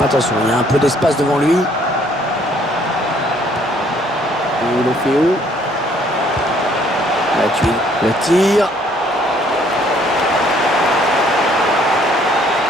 Attention, il y a un peu d'espace devant lui. Deulofeu. Matuidi. Le tir.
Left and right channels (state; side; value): normal; both; correlation 0.63